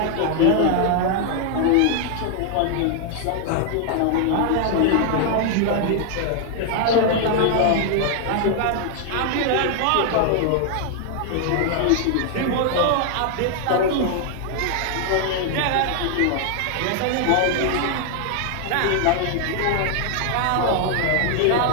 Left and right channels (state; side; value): different; both; correlation 0.00